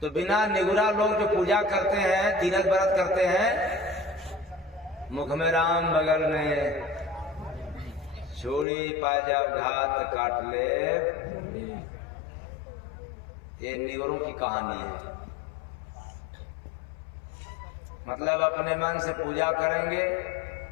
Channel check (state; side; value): drops out; right; at 8.7 s